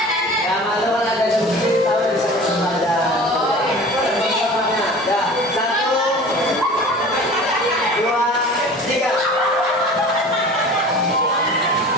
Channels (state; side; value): normal; both; correlation 0.41